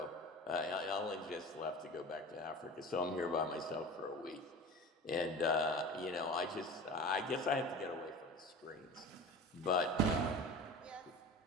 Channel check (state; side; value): normal; both; correlation 0.35